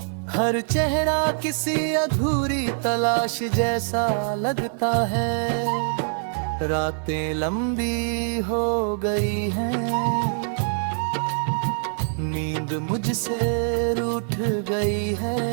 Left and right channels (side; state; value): left; silent; digital silence